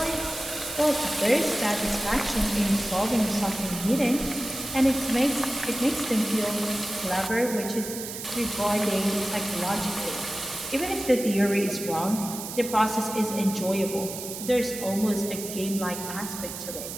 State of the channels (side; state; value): right; noise; hiss, 8 dB below the sound